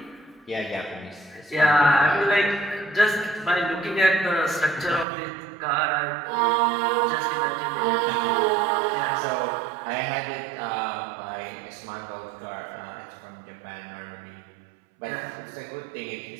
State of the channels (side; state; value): left; drops out; at 5.1 s